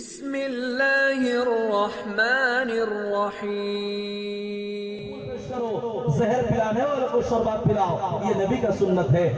রহমানির রহিম। जहर पिलाने वालों को शरबत पिलाओ, ये नबी का सुन्नत है।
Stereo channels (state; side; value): identical; both; correlation 1.00